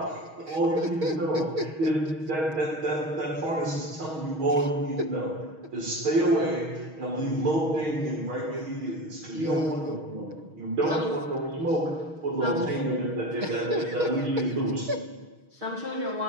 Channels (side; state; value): left; late; 6.3 ms